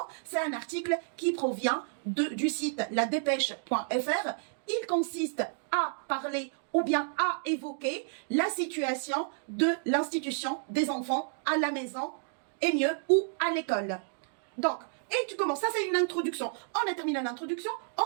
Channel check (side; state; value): left; silent; digital silence